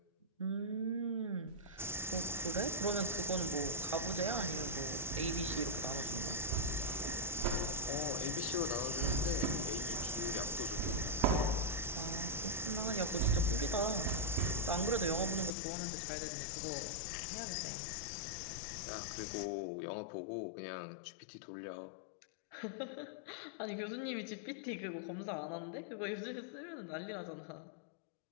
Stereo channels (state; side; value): drops out; right; at 15.5 s